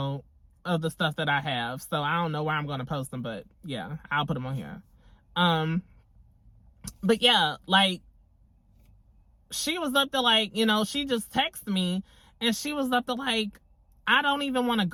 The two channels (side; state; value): both; identical; correlation 1.00